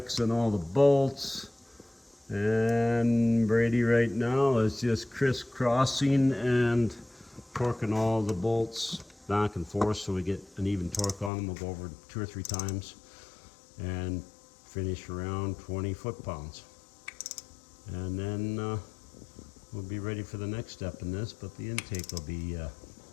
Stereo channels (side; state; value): right; drops out; at 11.3 s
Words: on all the bolts. And Brady right now is just crisscrossing and torquing all the bolts back and forth so we get an even torque on them. We'll go over 2 or 3 times and finish around 20 foot-pounds. And then we'll be ready for the next step in this, but the intake will be